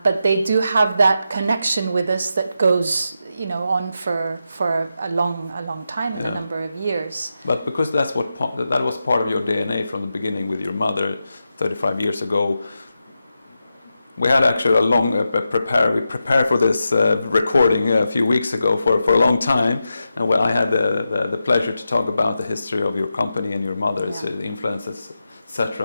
But they do have that connection with us that goes on for a long time, a number of years. But because that was part of your DNA from the beginning with your mother 35 years ago. We had actually a long we prepared for this recording a few weeks ago for a long time, and where I had the pleasure to talk about the history of your company and your mother's influences,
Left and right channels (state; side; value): inverted; both; correlation -0.88